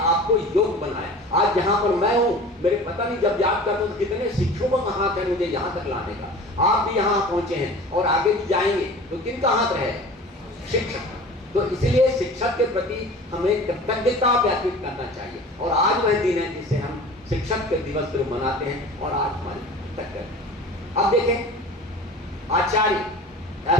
योग बनाया। आज जहां पर मैं हूं, मेरे पता नहीं जब याद करता हूं तो कितने शिक्षकों का हाथ है मुझे यहां तक लाने का। आप भी यहां पहुंचे हैं और आगे भी जाएंगे, तो किनका हाथ रहे, शिक्षक। तो इसलिए शिक्षक के प्रति हमें कृतज्ञता व्यक्त करना चाहिए। और आज वह दिन है जिसे हम शिक्षक के दिवस पर मनाते हैं और आज हमारी कृतज्ञता। अब देखें आचार्य,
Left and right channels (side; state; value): both; normal; correlation 0.40